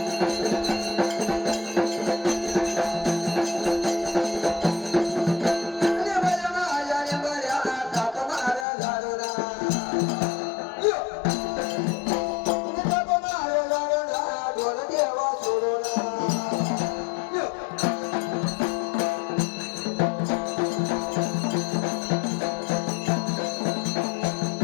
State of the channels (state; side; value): drops out; right; at 8.7 s